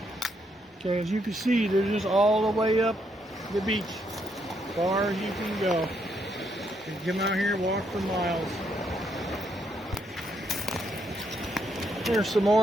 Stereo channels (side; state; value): both; normal; correlation 0.75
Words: Okay, as you can see, they're just all the way up the beach, as far as you can go. You can come out here and walk for miles. Here's some